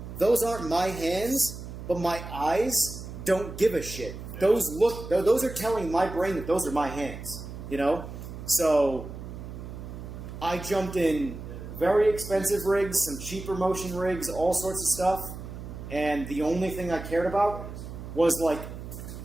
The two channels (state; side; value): noise; right; hum, 10 dB below the sound